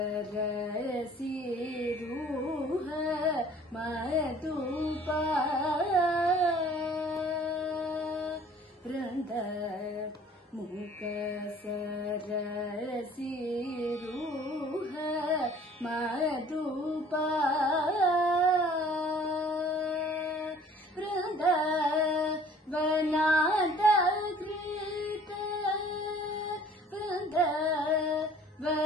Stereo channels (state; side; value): normal; both; correlation 0.52